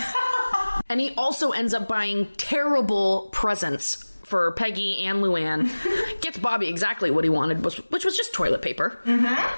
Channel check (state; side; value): inverted; both; correlation -1.00